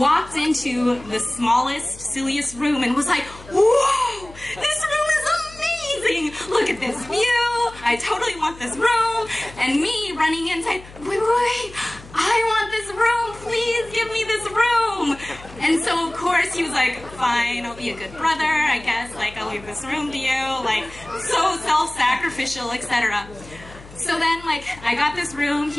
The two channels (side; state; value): left; noise; hum, 19 dB below the sound